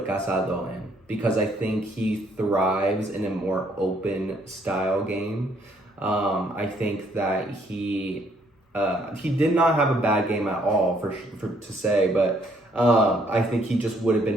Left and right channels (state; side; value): normal; both; correlation 0.67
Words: Casado in because I think he thrives in a more open style game. I think that he did not have a bad game at all to say, but I think he just would have